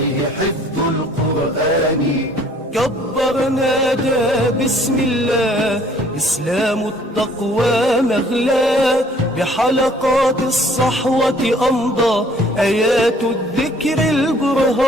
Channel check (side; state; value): both; normal; correlation 0.57